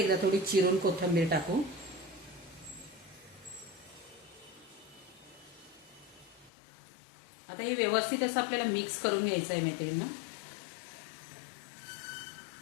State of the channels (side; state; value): right; drops out; at 6.5 s